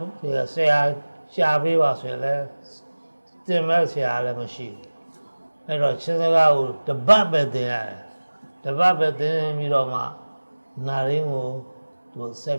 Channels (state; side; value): inverted; both; correlation -1.00